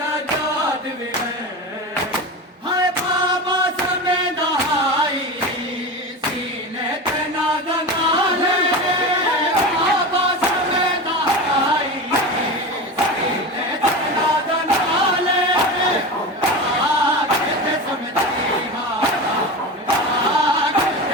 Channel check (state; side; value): normal; both; correlation 0.26